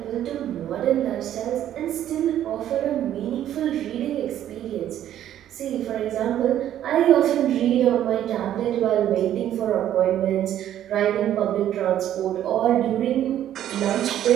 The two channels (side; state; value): left; quieter; 11.4 dB